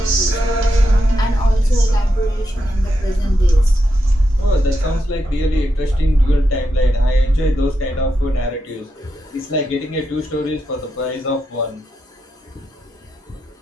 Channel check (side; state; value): both; normal; correlation 0.85